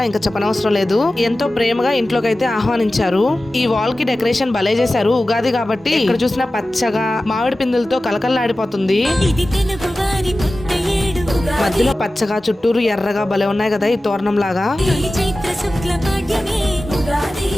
ఇంకా చెప్పనవసరం లేదు. ఎంతో ప్రేమగా ఇంట్లోకి అయితే ఆహ్వానించారు. ఈ వాల్ కి డెకరేషన్ భలే చేశారు. ఉగాది కాబట్టి ఇక్కడ చూసిన పచ్చగా మామిడి పిందులతో కలకల్లాడిపోతుంది. మధ్యలో పచ్చగా చుట్టూరు ఎర్రగా భలే ఉన్నాయి కదా ఈ తోరణం లాగా.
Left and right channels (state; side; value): normal; both; correlation 0.95